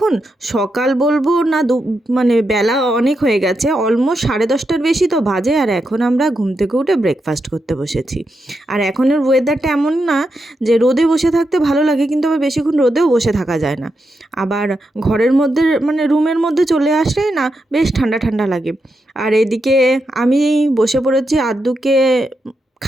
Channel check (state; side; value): normal; both; correlation 0.85